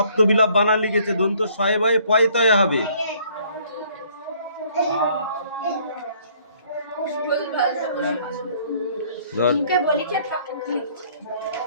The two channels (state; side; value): inverted; both; correlation -0.61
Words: বানান লিখেছে, দন্ত শয়ে বয়ে পয়তয়ে হবে।